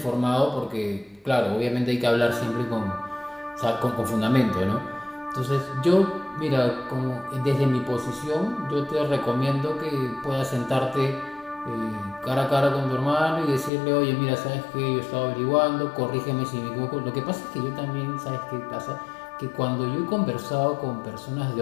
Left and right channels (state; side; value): drops out; right; at 13.7 s